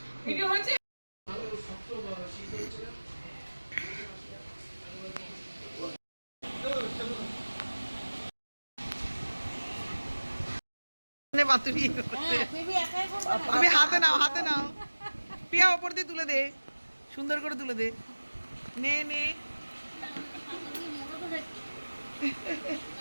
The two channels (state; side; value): inverted; both; correlation -1.00